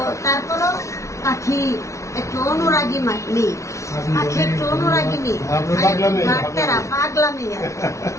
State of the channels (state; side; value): late; right; 0.14 ms